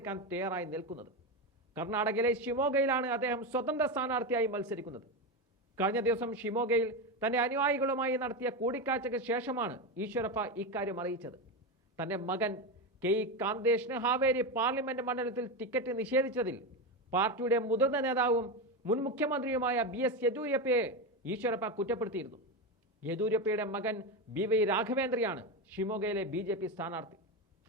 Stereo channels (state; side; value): normal; both; correlation 0.14